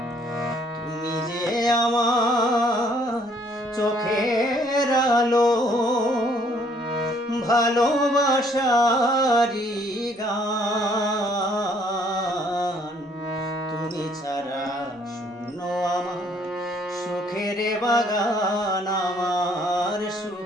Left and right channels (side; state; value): both; normal; correlation 0.63